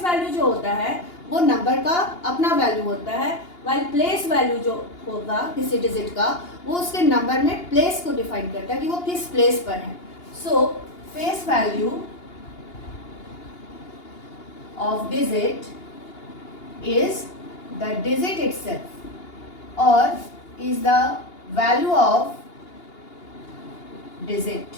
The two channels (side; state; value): right; late; 2.8 ms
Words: value जो होता है वो नंबर का अपना वैल्यू होता है, वाइल प्लेस वैल्यू जो होगा किसी डिजिट का वो उसके नंबर में प्लेस को डिफाइन करता है कि वो किस प्लेस पर है। सो face value of digit is the digit itself or is the value of